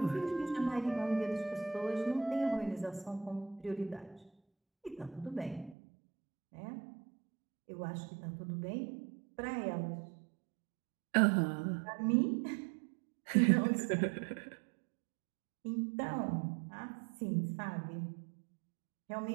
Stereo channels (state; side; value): drops out; left; at 5.8 s